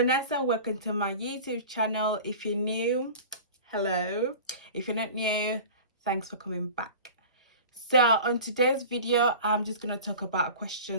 Welcome to my YouTube channel. If you're new, hello. If you're not new, thanks for coming back. So on today's video, I'm just going to talk about a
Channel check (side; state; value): both; inverted; correlation -0.37